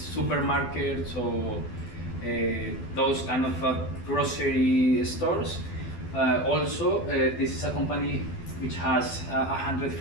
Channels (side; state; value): right; late; 12 ms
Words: or those kind of grocery stores. Also, this is a company which has